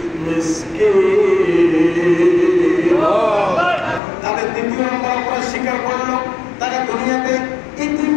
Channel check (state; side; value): drops out; right; at 4.0 s